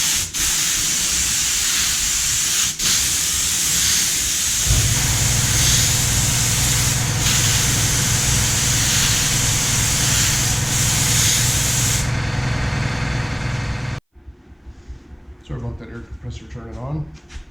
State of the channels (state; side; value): identical; both; correlation 1.00